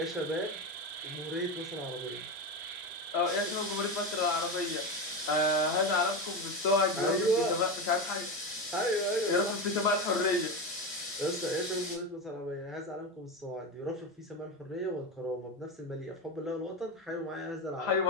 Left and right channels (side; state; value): both; normal; correlation 0.17